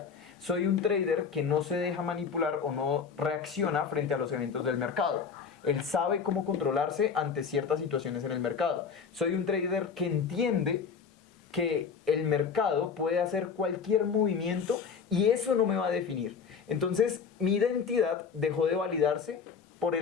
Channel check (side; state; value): right; quieter; 6.1 dB